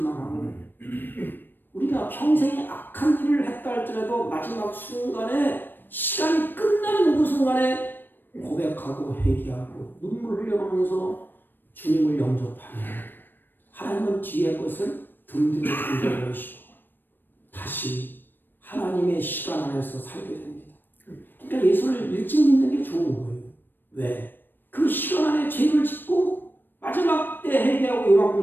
하고, 우리가 평생에 악한 일을 했다 할지라도 마지막 순간에 시간이 끝나는 그 순간에 고백하고 회개하고 눈물 흘려가면서 주님을 영접하며 하나님은 뒤의 것을 든든히 던져버리시고 다시 하나님의 시간 안에서 살게 됩니다. 그러니까 예수를 일찍 믿는 게 좋은 거예요. 왜? 그 시간 안에 죄를 짓고 마지막 때 회개하고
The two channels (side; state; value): right; late; 0.094 ms